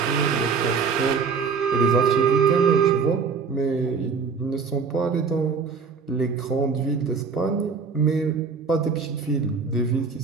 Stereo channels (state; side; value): quieter; left; 5.3 dB